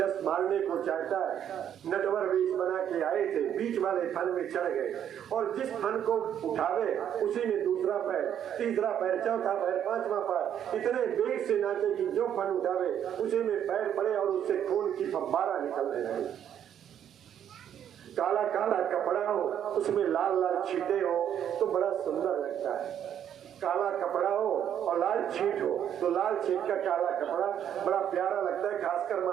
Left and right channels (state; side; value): quieter; left; 9.6 dB